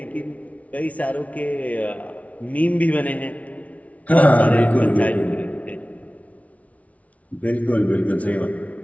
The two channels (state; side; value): late; right; 0.067 ms